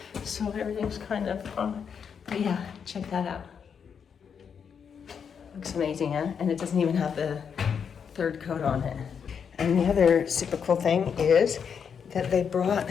So everything's kind of but yeah, check that out. Looks amazing, huh? And it doesn't even have the third coat on it. And the other super cool thing is that they brought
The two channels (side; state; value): right; quieter; 7.0 dB